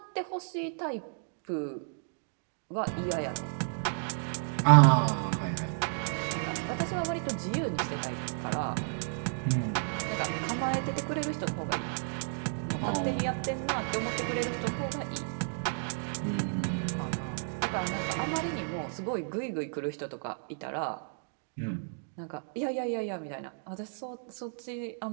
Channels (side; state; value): left; silent; digital silence